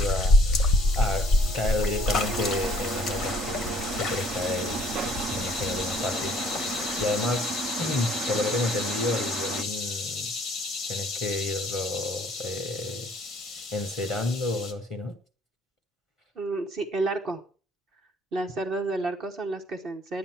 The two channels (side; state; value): both; normal; correlation 0.60